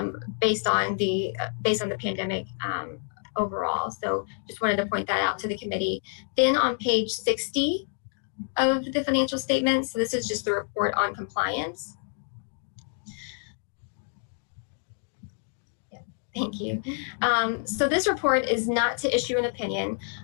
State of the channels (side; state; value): right; silent; 59 dB below the other